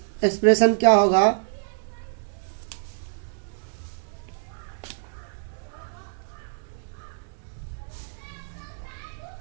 एक्सप्रेशन क्या होगा।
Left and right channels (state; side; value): silent; left; 61 dB below the other